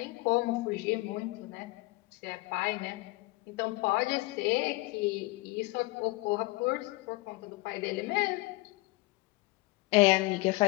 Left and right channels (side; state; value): right; quieter; 22.1 dB